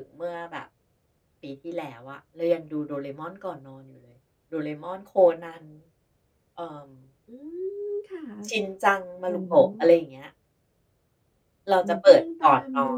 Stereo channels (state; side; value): identical; both; correlation 1.00